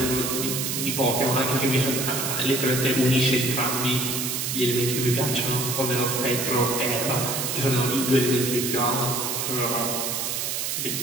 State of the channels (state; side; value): noise; right; hiss, 1 dB below the sound